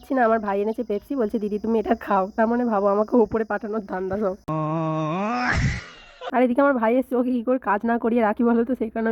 না। আমার ভাই এনেছে পেপসি, বলছে দিদি তুমি এটা খাও। তার মানে ভাবো আমাকে ওপরে পাঠানোর ধান্দা সব। আর এদিকে আমার ভাই এসছে, ওকে কী করে কাজ না করিয়ে রাখি বলো তো। সেই কারণে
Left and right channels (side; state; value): both; identical; correlation 1.00